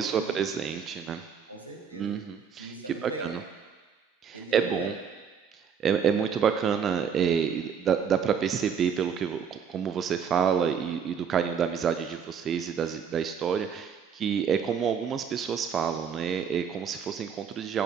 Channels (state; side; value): quieter; left; 7.2 dB